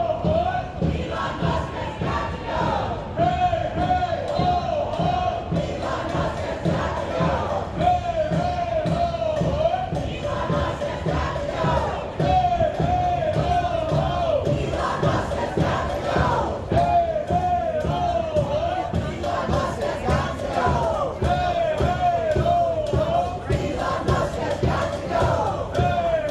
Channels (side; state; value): both; identical; correlation 1.00